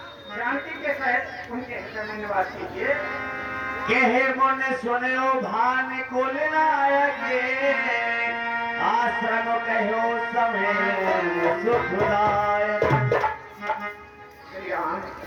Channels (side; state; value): both; identical; correlation 1.00